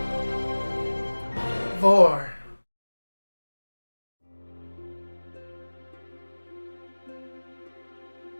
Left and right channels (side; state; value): both; inverted; correlation -1.00